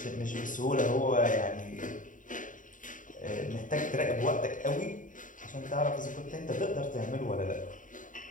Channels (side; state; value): right; late; 0.38 ms